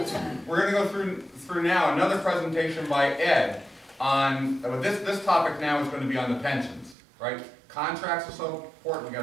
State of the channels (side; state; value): left; drops out; at 7.0 s